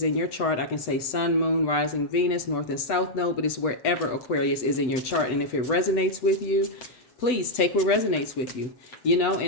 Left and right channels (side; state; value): right; late; 7.9 ms